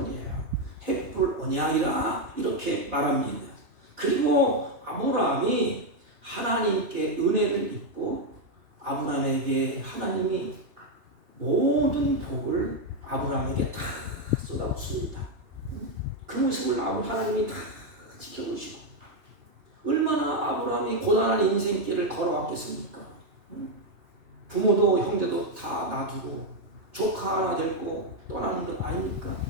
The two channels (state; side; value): late; left; 3.0 ms